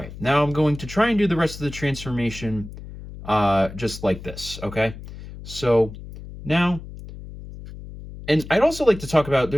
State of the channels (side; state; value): left; noise; hum, 13 dB below the sound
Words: now I'm going to try and do the rest of the transformation just like this, okay? So now, and I'd also like to talk about,